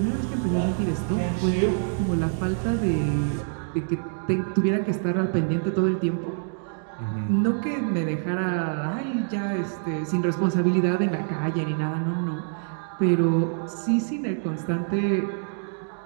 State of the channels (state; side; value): silent; left; digital silence